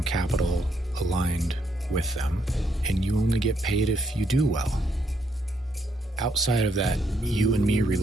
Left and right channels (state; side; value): normal; both; correlation 0.74